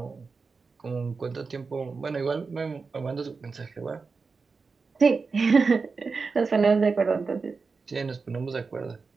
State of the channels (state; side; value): quieter; left; 4.6 dB